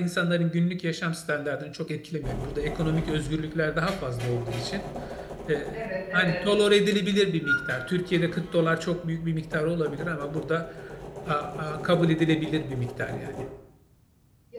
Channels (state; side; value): identical; both; correlation 1.00